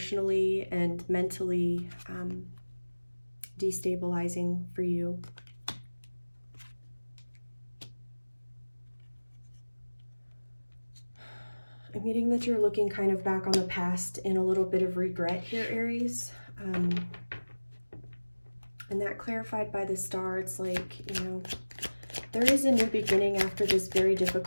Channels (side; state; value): both; inverted; correlation -1.00